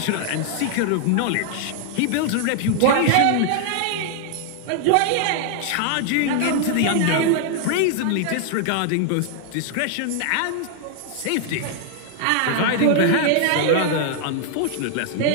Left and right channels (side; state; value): both; different; correlation 0.00